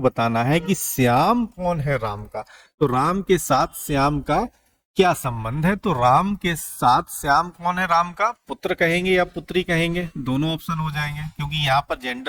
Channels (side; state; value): both; identical; correlation 1.00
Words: है कि श्याम कौन है राम का। तो राम के साथ श्याम का क्या संबंध है, तो राम के साथ श्याम कौन है, राम का पुत्र कहेंगे या पुत्री कहेंगे, दोनों ऑप्शन हो जाएंगे, क्योंकि यहाँ पर